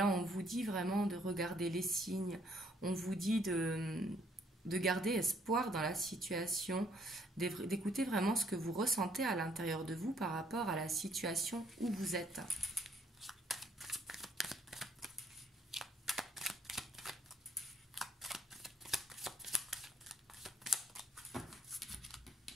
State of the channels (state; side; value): normal; both; correlation 0.66